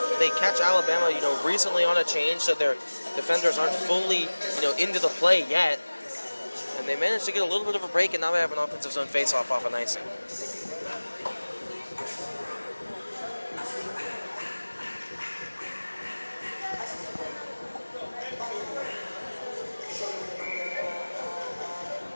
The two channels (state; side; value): inverted; both; correlation -1.00